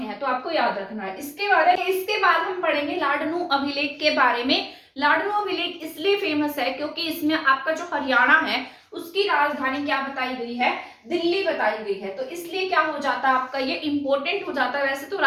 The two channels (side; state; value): both; identical; correlation 1.00